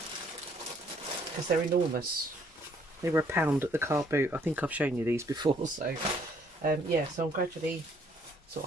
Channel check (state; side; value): normal; both; correlation 0.64